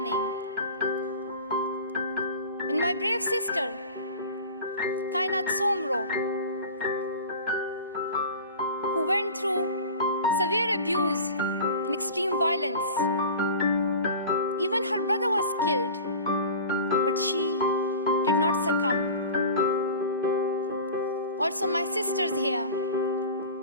And my brave sister, Kainat Somro, who went through severe abuse and extreme violence. Even her brother was killed, but she did not succumb. Also my sisters here,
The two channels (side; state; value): both; inverted; correlation -0.36